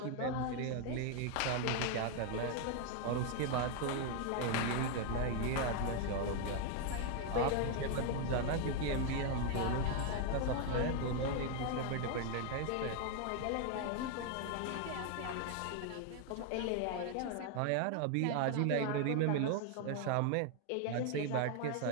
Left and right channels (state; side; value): different; both; correlation 0.01